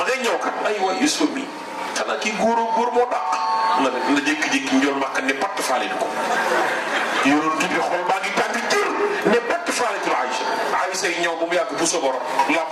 ngay ñëw kat ay waay Yuusufa mii xanaa kii góor moo dàq na jékki-jékki njool màkk ne patt faale ko yonent bi xol baa ngi tàng jir ne patt faale ko Aïcha yi ñëw ba mu yàgg bu sobor làmp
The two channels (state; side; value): identical; both; correlation 1.00